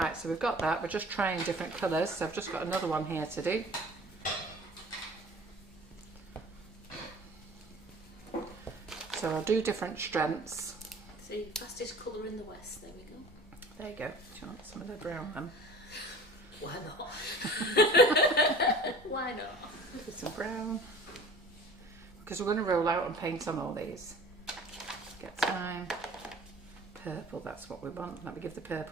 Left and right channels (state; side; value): normal; both; correlation 0.45